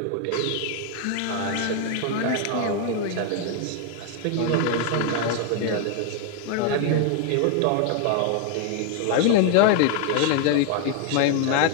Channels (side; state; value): both; different; correlation 0.01